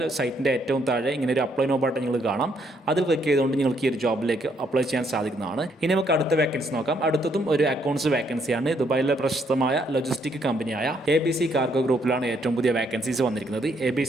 സൈറ്റിൻ്റെ ഏറ്റവും താഴെ ഇങ്ങനെ ഒരു അപ്ലൈ നോ ബട്ടൺ നിങ്ങൾ കാണാം. അതിൽ ക്ലിക്ക് ചെയ്തുകൊണ്ട് നിങ്ങൾക്ക് ഈ ഒരു ജോബിലേക്ക് അപ്ലൈ ചെയ്യാൻ സാധിക്കുന്നതാണ്. ഇനി നമുക്ക് അടുത്ത വാക്കൻസി നോക്കാം. അടുത്തതും ഒരു അക്കൗണ്ട്സ് വാക്കൻസിയാണ്. ദുബായിലെ പ്രശസ്തമായ ലോജിസ്റ്റിക് കമ്പനിയായ ABC കാർഗോ ഗ്രൂപ്പിലാണ് ഏറ്റവും പുതിയ വാക്കൻസീസ് വന്നിരിക്കുന്നത്.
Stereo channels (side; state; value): both; normal; correlation 0.71